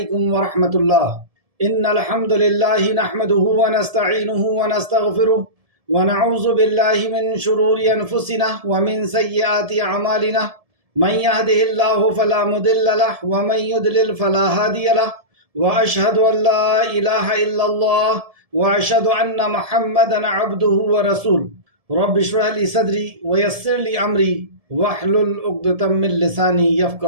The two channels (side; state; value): left; late; 1.7 ms